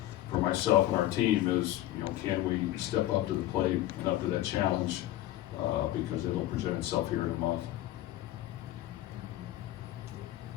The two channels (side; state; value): right; quieter; 14.7 dB